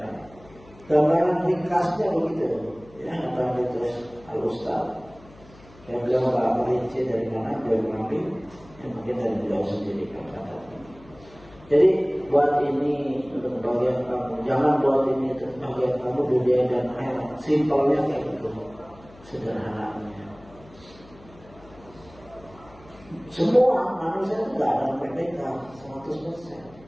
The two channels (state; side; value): noise; left; hum, 24 dB below the sound